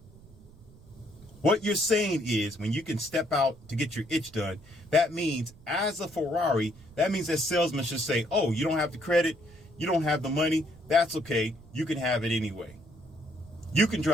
What you're saying is when you can step out to get your itch done, that means as a Ferrari, that means that salesman should say, oh, you don't have the credit, you don't have the money, that's okay, you can have it anyway. You can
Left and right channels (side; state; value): right; noise; rumble, 23 dB below the sound